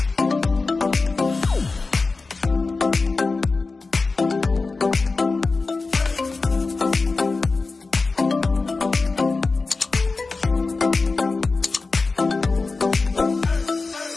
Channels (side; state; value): right; quieter; 3.9 dB